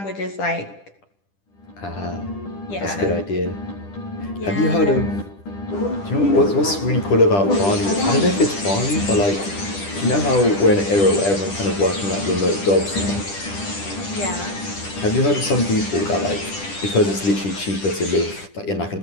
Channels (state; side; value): late; right; 10 ms